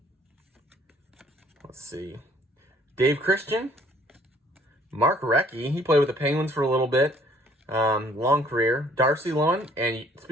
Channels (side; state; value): both; normal; correlation 0.59